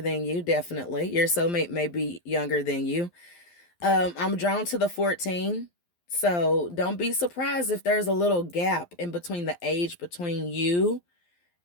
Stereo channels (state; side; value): late; right; 12 ms